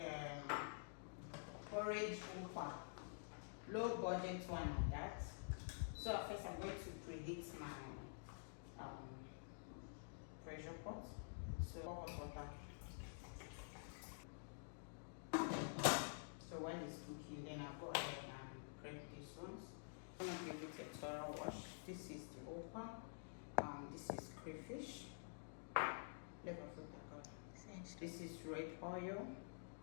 porridge ukwa, low budget one like that. So first I'm going to preheat my pressure pot. So hot water. So while it's cooking, then I'll go ahead and prep these ones. I'm going to give it a thorough wash. This is the ukwa. This is crayfish. This is red oil.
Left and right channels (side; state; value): right; silent; digital silence